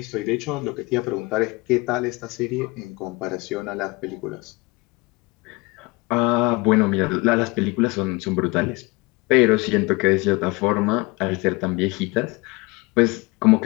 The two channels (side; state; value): right; quieter; 24.8 dB